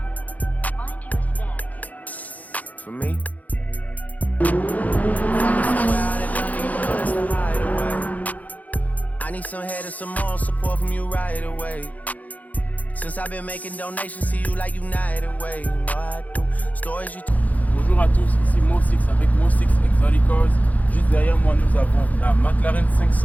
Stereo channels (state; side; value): late; right; 0.077 ms